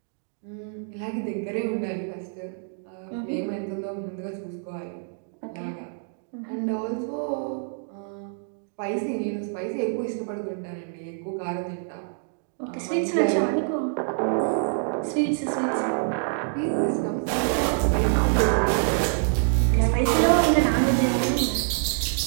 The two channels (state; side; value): silent; left; digital silence